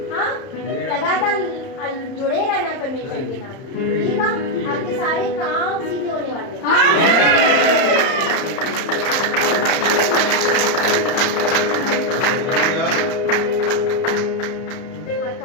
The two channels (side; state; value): right; late; 31 ms